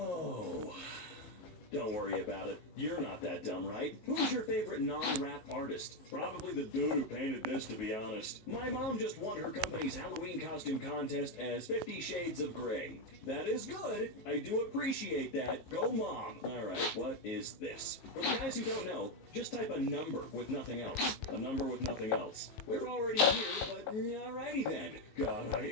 Don't worry about it. You're not that dumb, right? Who's your favorite non-rap artist? Probably the dude who painted this, to be honest. My mom just won her company's Halloween costume contest as 50 Shades of Grey. That is good. I do appreciate that. Go, Mom. All right, what is this? For the guys who don't know, just type a number with nothing else. A number with nothing else. We're already here, but alrighty then. God, I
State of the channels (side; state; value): right; late; 19 ms